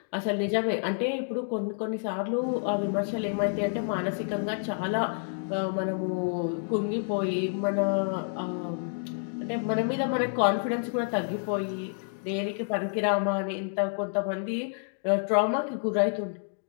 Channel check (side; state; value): right; silent; digital silence